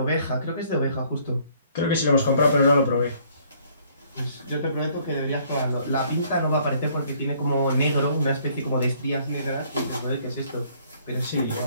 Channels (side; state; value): both; inverted; correlation -0.62